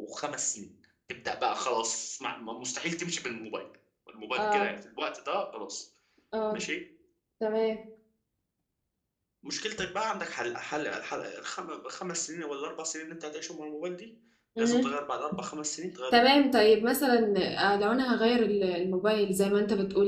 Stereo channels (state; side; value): identical; both; correlation 1.00